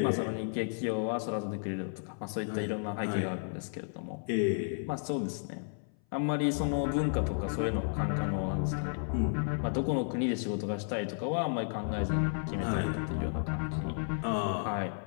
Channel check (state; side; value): silent; right; 56 dB below the other